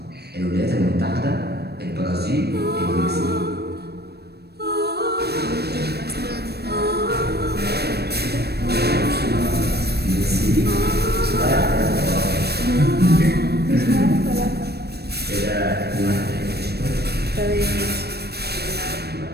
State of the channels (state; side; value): late; left; 0.47 ms